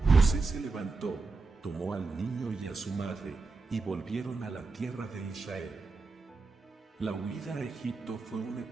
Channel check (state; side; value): quieter; left; 3.9 dB